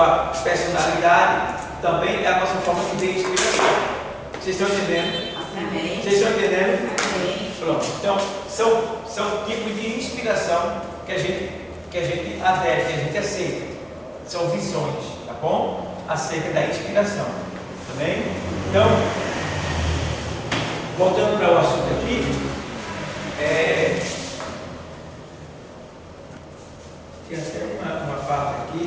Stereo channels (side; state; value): both; identical; correlation 1.00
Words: personalidade, também é a nossa forma de ver inspiração. Vocês estão entendendo? Amém. Vocês estão entendendo? Amém. Pronto. Então, são tipos de inspiração que a gente adere, que a gente aceita. São visões, tá bom? Acerca da inspiração. Tá bem? Então, voltando para o assunto aqui, tem até uma parte